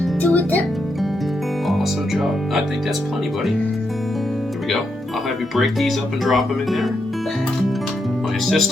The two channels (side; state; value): both; normal; correlation 0.82